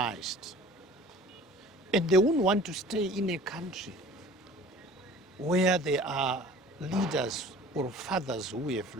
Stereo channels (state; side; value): normal; both; correlation 0.46